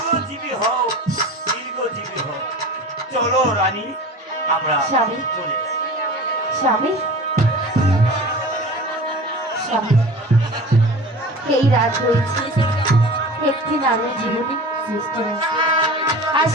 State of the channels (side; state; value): both; normal; correlation 0.37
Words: হও, দীর্ঘজীবী হও। চলো রানী, আমরা স্বামী। চলে যাই। স্বামী, স্বামী, এই রাত রয়েছে একটি নারীর জীবনে সৃষ্ট হয়েছে, আর